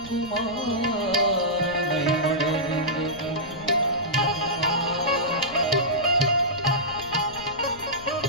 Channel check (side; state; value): left; noise; rumble, 18 dB below the sound